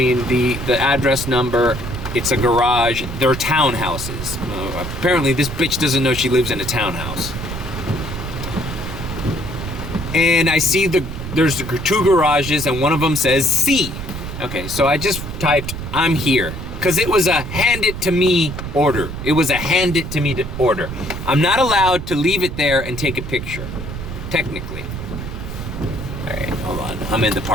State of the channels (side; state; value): right; noise; rumble, 7 dB below the sound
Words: address number. It's a garage. They're townhouses. Apparently this bitch doesn't know she lives in a townhouse. And I see there's 2 garages and one of them says C. Okay, so I just typed, I'm here. Because it was a hand it to me order. It was a hand it to me order. I'm not allowed to leave it there and take a picture, technically. All right, hold on. I'm in the